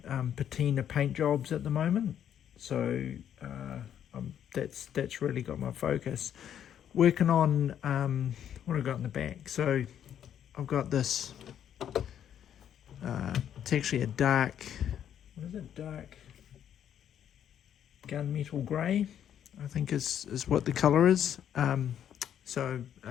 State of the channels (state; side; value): quieter; right; 9.7 dB